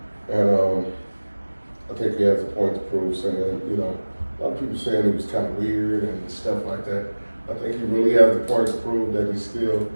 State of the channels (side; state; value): both; inverted; correlation -1.00